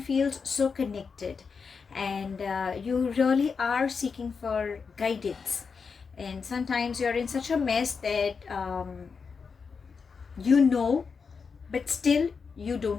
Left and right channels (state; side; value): quieter; right; 5.5 dB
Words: so connected, and you really are seeking for guidance, and sometimes you're in such a mess that but still you